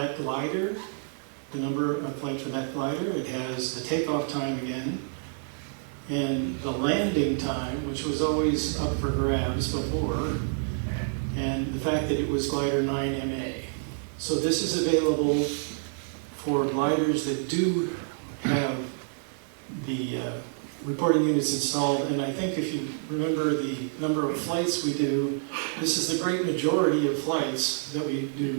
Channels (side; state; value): left; silent; digital silence